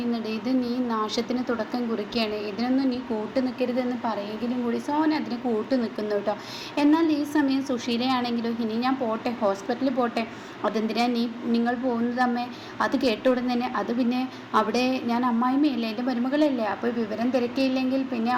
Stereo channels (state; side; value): identical; both; correlation 1.00